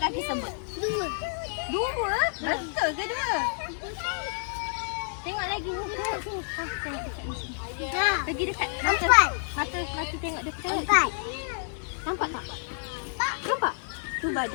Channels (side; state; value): right; silent; digital silence